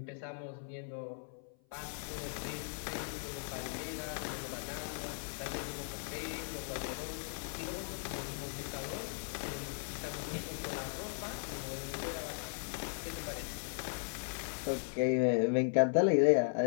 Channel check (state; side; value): silent; right; 53 dB below the other